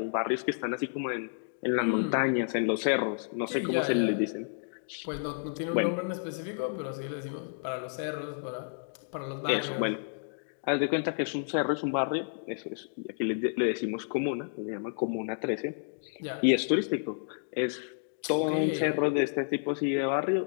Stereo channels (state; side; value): silent; right; digital silence